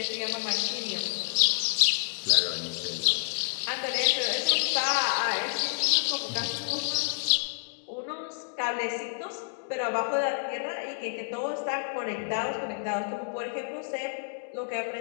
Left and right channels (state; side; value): silent; right; digital silence